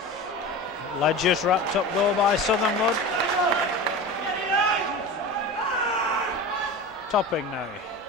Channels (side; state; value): both; normal; correlation 0.30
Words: Ledger's wrapped up though by Southernwood. Topping now.